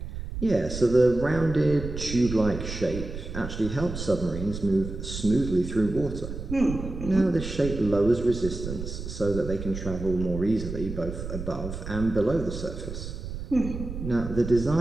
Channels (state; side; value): noise; right; rumble, 8 dB below the sound